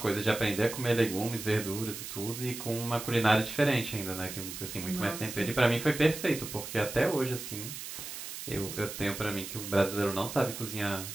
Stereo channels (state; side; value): noise; right; hiss, 9 dB below the sound